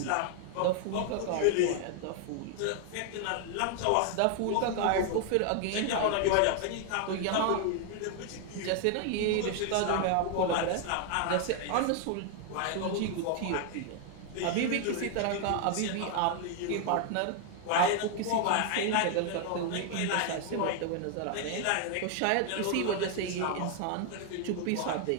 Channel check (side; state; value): both; different; correlation 0.00